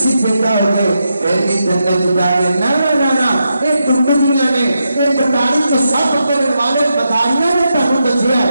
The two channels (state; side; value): inverted; both; correlation -0.85